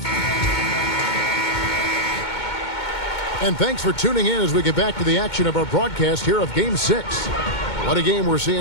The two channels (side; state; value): right; late; 2.2 ms